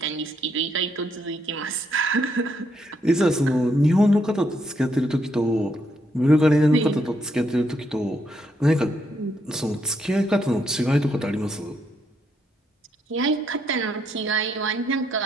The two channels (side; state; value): both; normal; correlation 0.76